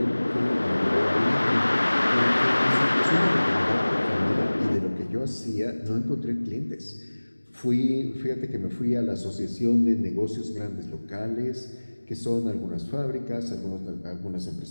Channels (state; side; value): inverted; both; correlation -1.00